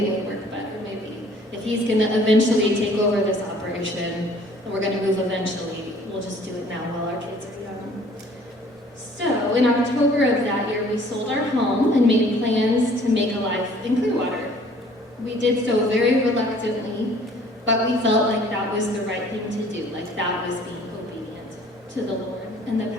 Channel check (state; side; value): normal; both; correlation 0.55